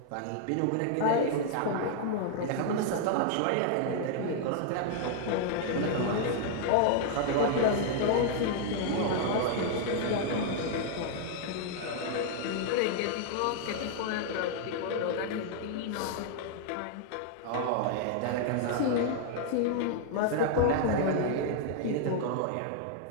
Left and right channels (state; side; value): different; both; correlation 0.00